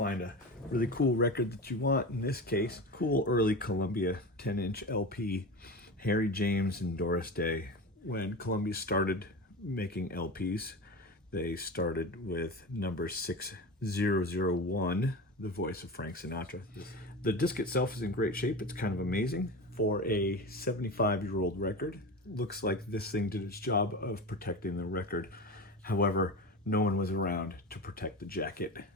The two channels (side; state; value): both; normal; correlation 0.27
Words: a really cool record that you want. In this case, cool early Columbia 10-inch LP, Harry James and Doris Day. When Columbia started making LPs, they started with number 6001, the voice of Frank Sinatra. The disc itself is in great shape. It's kind of amazing for a 75-year-old record. Looks like this thing did its job of protecting the record. However, no one was around to protect the jacket,